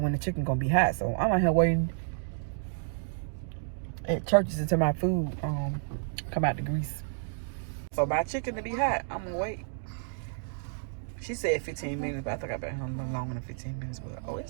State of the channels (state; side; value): silent; left; digital silence